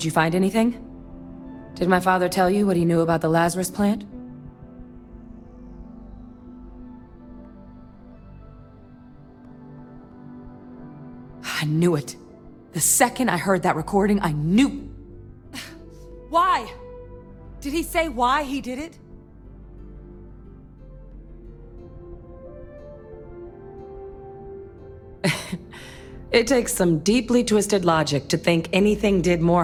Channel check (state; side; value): identical; both; correlation 1.00